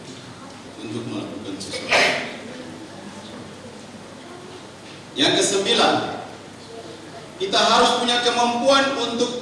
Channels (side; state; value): both; identical; correlation 1.00